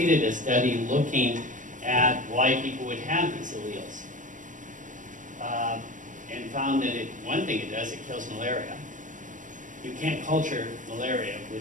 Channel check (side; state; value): left; late; 0.37 ms